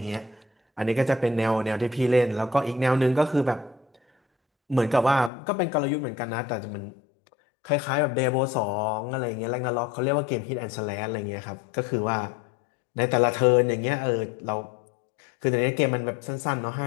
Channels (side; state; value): right; drops out; at 5.3 s